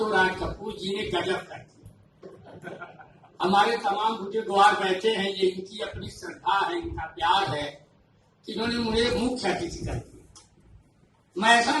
राज कपूर जी ने गजब कर दिया। हमारे तमाम बुजुर्गवार बैठे हैं, ये इनकी अपनी श्रद्धा है, इनका प्यार है कि इन्होंने मुझे मुख्य अतिथि कर दिया। मैं ऐसा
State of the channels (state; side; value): identical; both; correlation 1.00